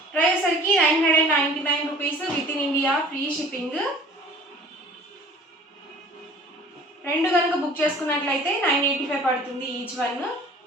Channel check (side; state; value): both; normal; correlation 0.48